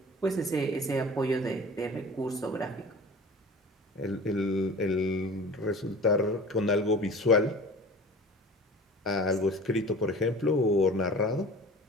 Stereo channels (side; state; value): both; normal; correlation 0.40